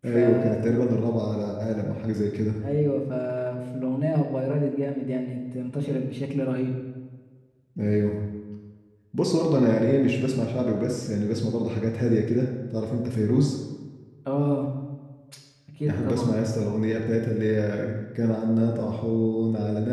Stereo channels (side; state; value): both; identical; correlation 1.00